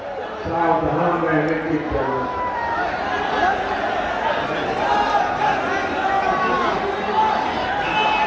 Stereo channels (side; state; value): both; identical; correlation 1.00